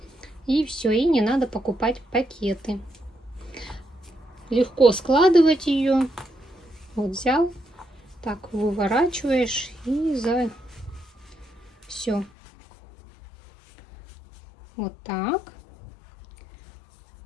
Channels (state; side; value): drops out; right; at 12.3 s